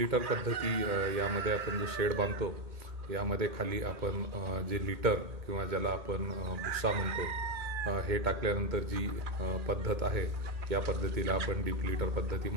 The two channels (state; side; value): late; left; 2.1 ms